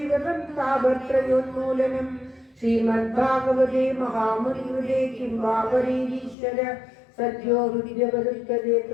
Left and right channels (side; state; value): right; drops out; at 6.4 s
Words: താപത്രയോന്മൂലനം. ശ്രീമദ്ഭാഗവതേ മഹാമുനികൃതേ കിം വാ പരീരീശ്വര സദ്യോ ഹൃദിരവരുത്തതേ